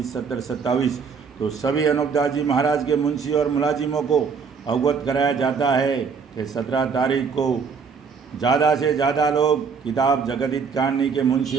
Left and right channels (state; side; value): quieter; left; 5.7 dB